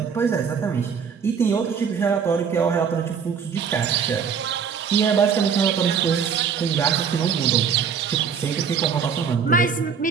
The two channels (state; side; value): quieter; left; 6.6 dB